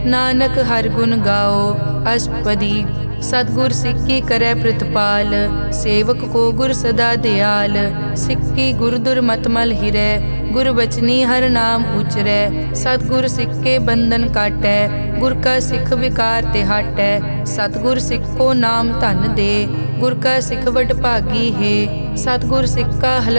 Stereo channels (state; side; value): inverted; both; correlation -1.00